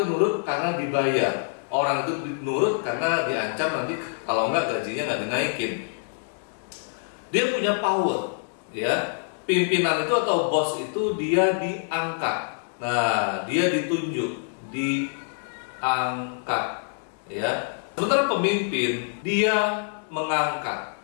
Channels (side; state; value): right; silent; digital silence